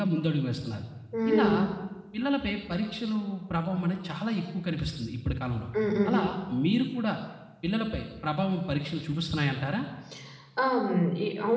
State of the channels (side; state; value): both; identical; correlation 1.00